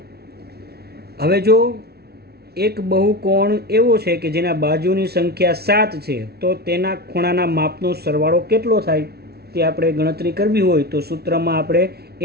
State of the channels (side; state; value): left; late; 0.46 ms